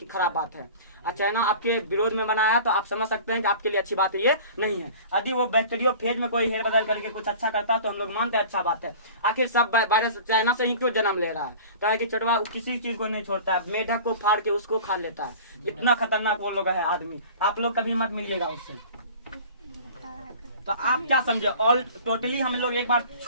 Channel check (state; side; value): inverted; both; correlation -0.41